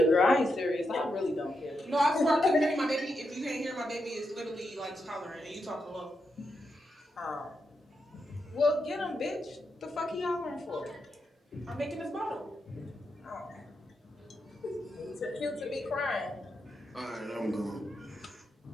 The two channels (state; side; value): normal; both; correlation 0.84